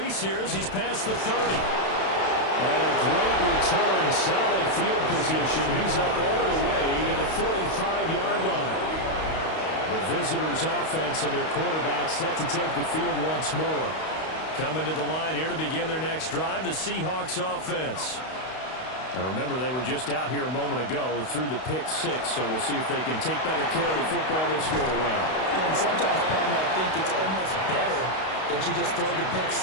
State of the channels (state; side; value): late; right; 32 ms